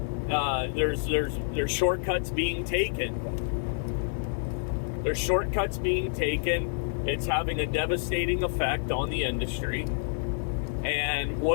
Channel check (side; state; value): right; silent; digital silence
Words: There's shortcuts being taken. There's shortcuts being taken. It's having a devastating effect on the industry. And